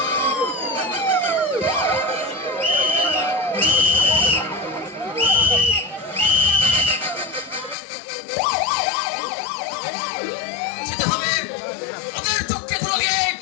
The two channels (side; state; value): right; drops out; at 7.8 s